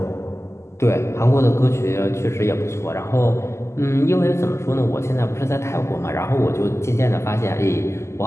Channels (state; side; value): late; right; 0.13 ms